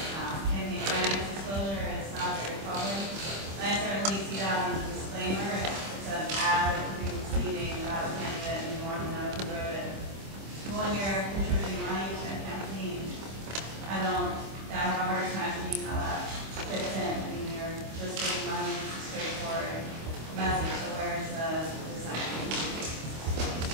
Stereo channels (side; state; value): left; late; 25 ms